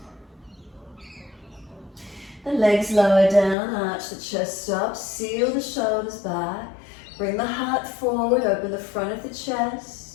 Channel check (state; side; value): drops out; right; at 3.6 s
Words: The legs lower down, arch the chest up, seal the shoulders back. Bring the heart forward, open the front of the chest.